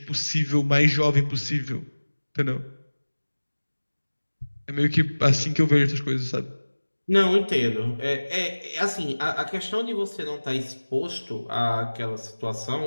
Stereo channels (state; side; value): inverted; both; correlation -1.00